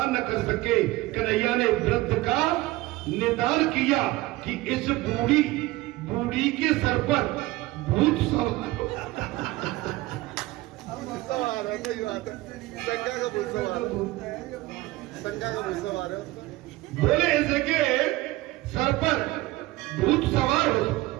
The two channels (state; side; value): quieter; left; 18.9 dB